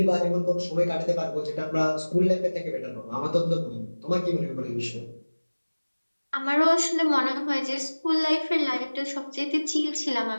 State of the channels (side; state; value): both; inverted; correlation -1.00